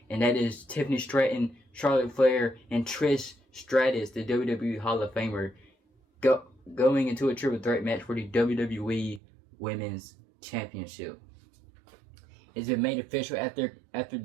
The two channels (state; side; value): drops out; left; at 9.2 s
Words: and that is Tiffany Stratton, Charlotte Flair, and Trish Stratus, the WWE Hall of Famer, going into a triple threat match for the WWE Women's Championship. It's been made official after